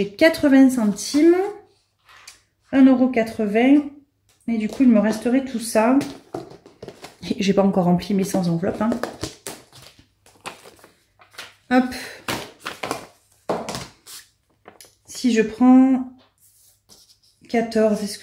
80 centimes, 1,80 €. Et du coup, il me resterait tout ça. J'ai pas encore rempli mes sans enveloppe. Hein. Hop. Si je prends 14, est-ce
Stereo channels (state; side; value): identical; both; correlation 1.00